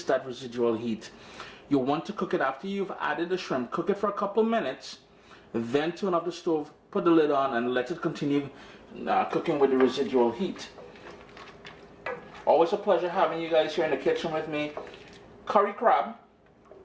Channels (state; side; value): identical; both; correlation 1.00